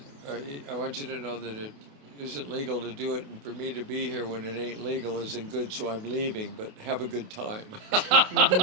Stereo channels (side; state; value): left; late; 28 ms